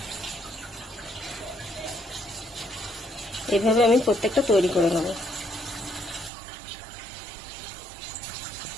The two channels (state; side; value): drops out; left; at 6.3 s